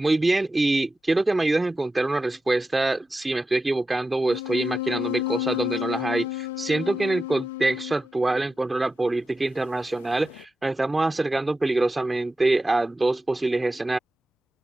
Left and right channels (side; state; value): both; normal; correlation 0.91